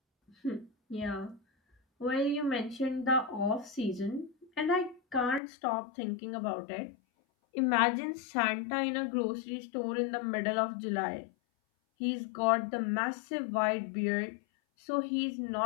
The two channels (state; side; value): drops out; right; at 5.4 s